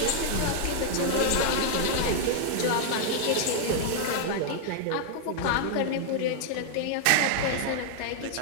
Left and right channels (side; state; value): both; different; correlation 0.00